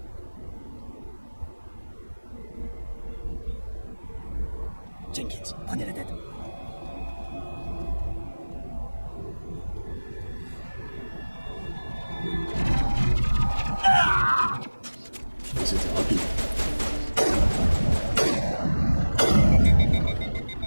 Jenkins, prenez la tête. C'était rapide.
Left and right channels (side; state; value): both; inverted; correlation -1.00